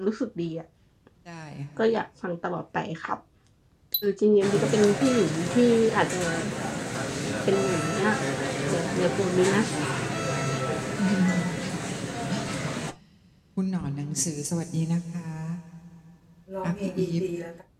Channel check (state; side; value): identical; both; correlation 1.00